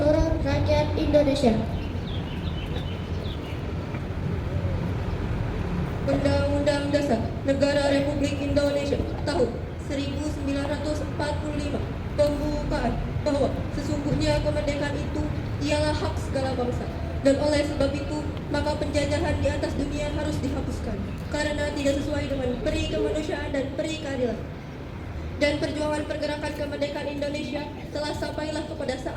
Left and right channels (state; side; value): identical; both; correlation 1.00